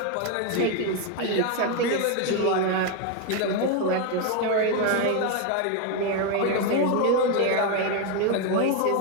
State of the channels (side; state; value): both; different; correlation 0.01